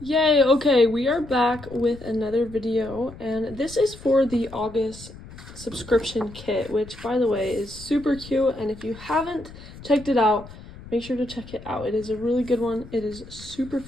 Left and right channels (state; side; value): noise; left; rumble, 17 dB below the sound